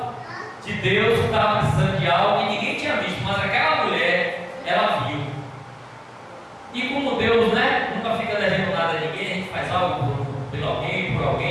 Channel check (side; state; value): both; identical; correlation 1.00